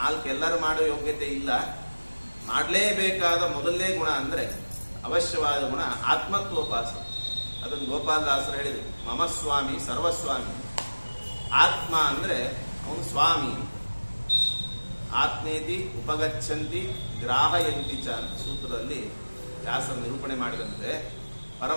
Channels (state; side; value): inverted; both; correlation -1.00